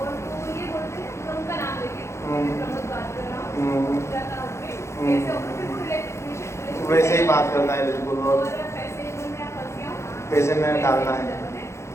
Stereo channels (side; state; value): right; late; 0.13 ms